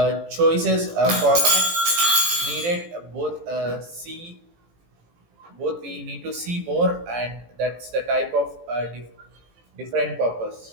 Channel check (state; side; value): late; left; 18 ms